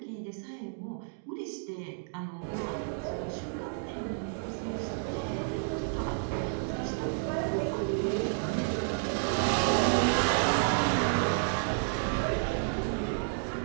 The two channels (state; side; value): silent; left; digital silence